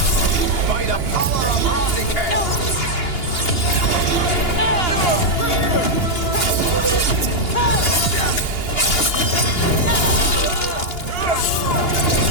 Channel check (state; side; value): late; right; 2.8 ms